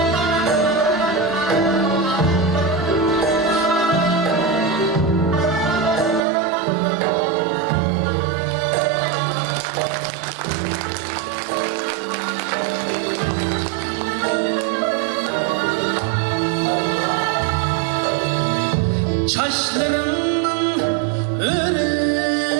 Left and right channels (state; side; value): drops out; left; at 6.2 s